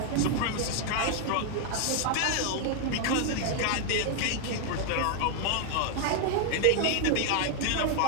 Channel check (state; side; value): different; both; correlation 0.00